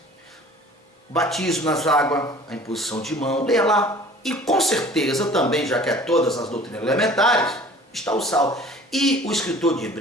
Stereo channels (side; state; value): both; normal; correlation 0.48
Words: Batismo nas águas, a imposição de mão, leia lá. E com certeza também, já que é todas as doutrinas elementares, está o sal. E o escritor de